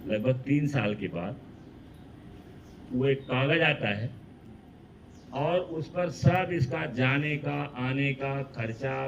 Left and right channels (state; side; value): identical; both; correlation 1.00